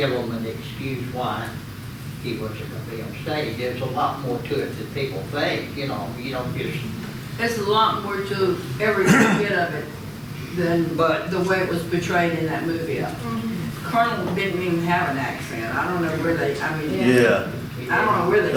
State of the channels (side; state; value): both; identical; correlation 1.00